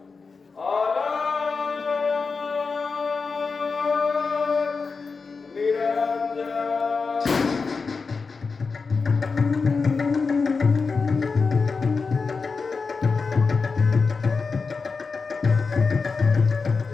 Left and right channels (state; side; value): quieter; right; 4.7 dB